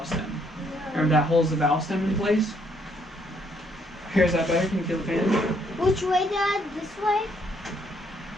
stem. Remember that holds the valve stem in place? Here's that better? Can you feel the fan? Which way, Dad? This way?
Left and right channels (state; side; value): normal; both; correlation 0.70